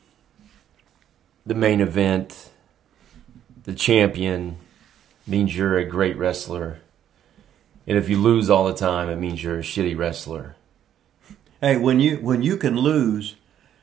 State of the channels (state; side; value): quieter; left; 10.4 dB